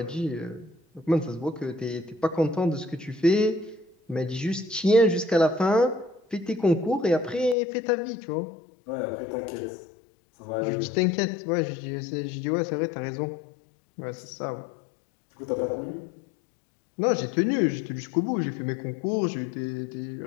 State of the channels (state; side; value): drops out; right; at 7.6 s